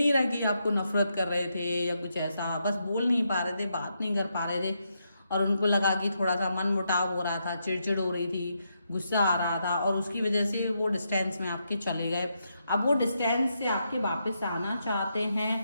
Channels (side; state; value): both; inverted; correlation -0.81